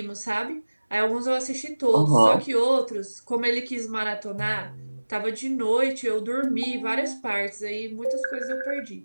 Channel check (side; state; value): both; inverted; correlation -1.00